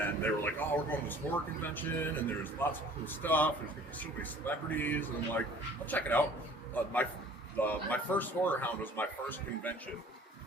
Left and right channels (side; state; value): both; normal; correlation 0.51